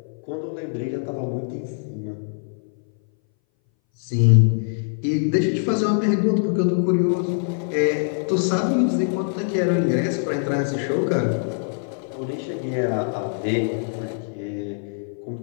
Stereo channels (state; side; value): silent; right; 61 dB below the other